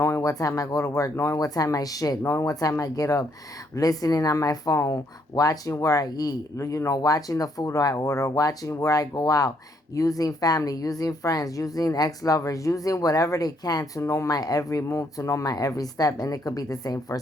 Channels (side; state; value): both; normal; correlation 0.71